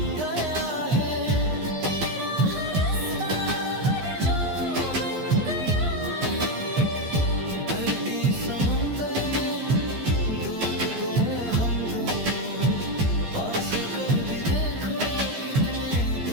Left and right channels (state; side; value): late; left; 13 ms